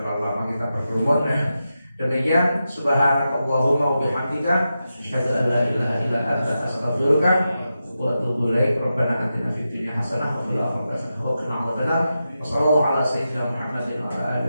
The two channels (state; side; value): inverted; both; correlation -0.90